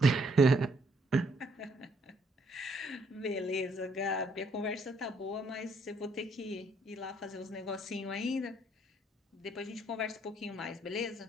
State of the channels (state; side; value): normal; both; correlation 0.69